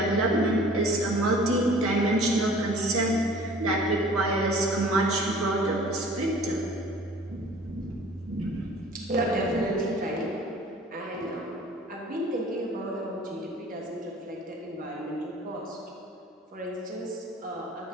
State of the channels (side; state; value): both; normal; correlation 0.48